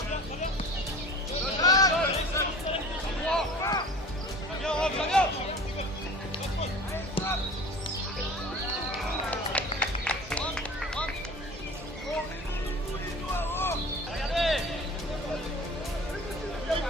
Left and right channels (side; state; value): both; normal; correlation 0.41